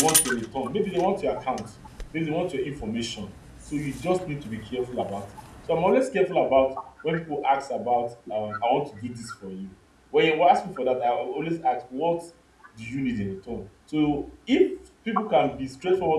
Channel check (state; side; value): identical; both; correlation 1.00